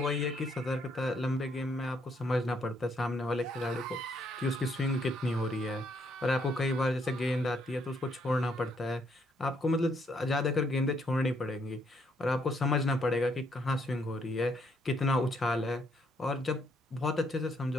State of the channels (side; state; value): both; normal; correlation 0.71